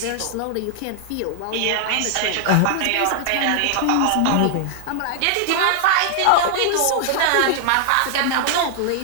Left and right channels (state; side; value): different; both; correlation 0.00